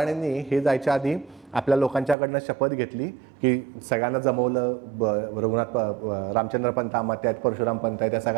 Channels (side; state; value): left; drops out; at 2.1 s